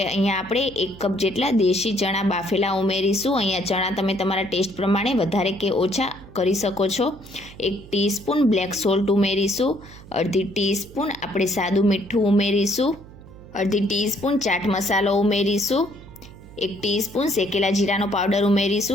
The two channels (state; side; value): noise; right; hum, 19 dB below the sound